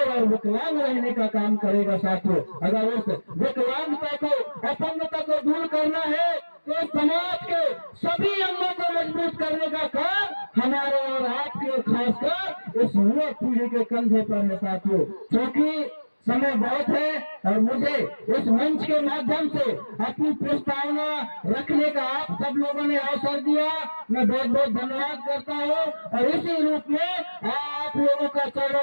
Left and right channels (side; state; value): both; inverted; correlation -1.00